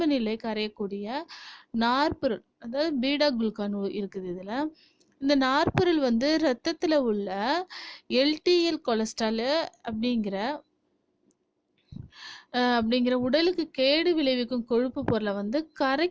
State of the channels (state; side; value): identical; both; correlation 1.00